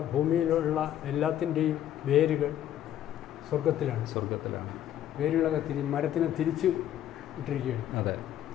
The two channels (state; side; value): quieter; right; 11.4 dB